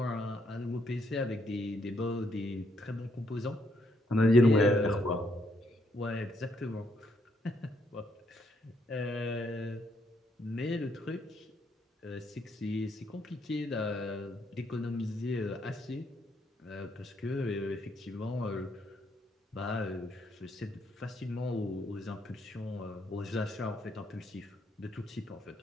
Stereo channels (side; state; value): both; normal; correlation 0.73